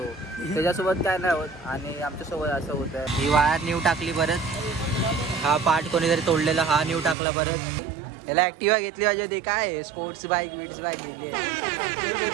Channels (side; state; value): left; drops out; at 7.2 s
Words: त्याच्यासोबत काय नाही होत आणि आमच्यासोबत असं होतं. ही वायर न्यू टाकली परत. हा पार्ट कोणीतरी तोडलेला हा न्यू टाकला परत. याला ऍक्टिवा घेतली पाहिजे होती. काय स्पोर्ट्स बाईक विट्स बाईक घेतली.